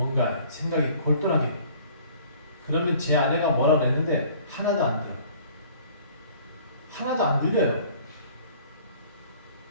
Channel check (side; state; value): both; inverted; correlation -0.52